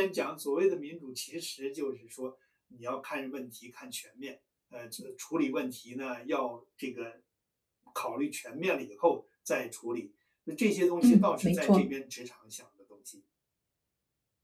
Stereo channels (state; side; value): identical; both; correlation 1.00